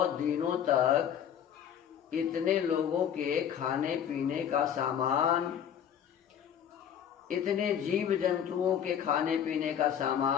दिनों तक इतने लोगों के खाने पीने का सामान, इतने जीव जंतुओं के खाने पीने का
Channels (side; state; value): right; quieter; 8.9 dB